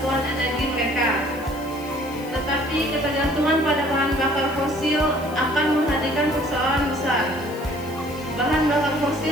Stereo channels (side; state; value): left; noise; hiss, 20 dB below the sound